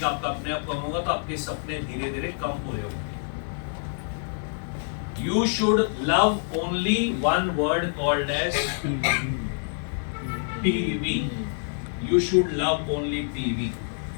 आपका अपने आप कम होगा, तो आपके सपने धीरे धीरे कम पूरे होंगे। You should love only one word called as PV. You should love only PV,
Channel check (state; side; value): silent; right; digital silence